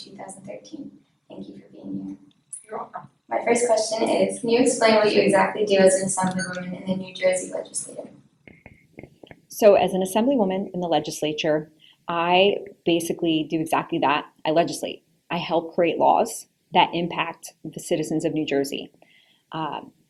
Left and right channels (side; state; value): both; identical; correlation 1.00